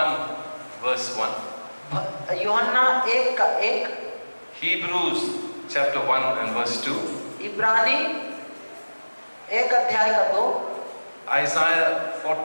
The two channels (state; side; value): inverted; both; correlation -1.00